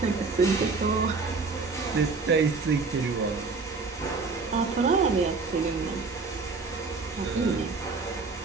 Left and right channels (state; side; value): quieter; left; 4.3 dB